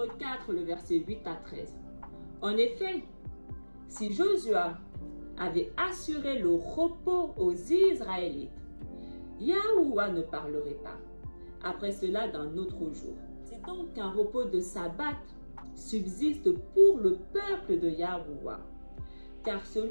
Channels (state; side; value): inverted; both; correlation -1.00